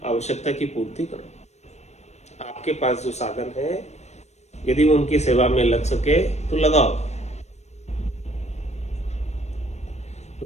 आवश्यकता की पूर्ति करो। आपके पास जो साधन है, यदि वो उनकी सेवा में लग सके तो लगाओ। तो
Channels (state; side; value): late; right; 0.32 ms